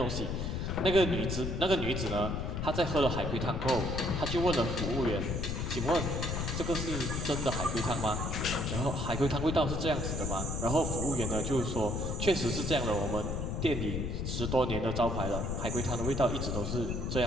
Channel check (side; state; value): left; noise; rumble, 2 dB below the sound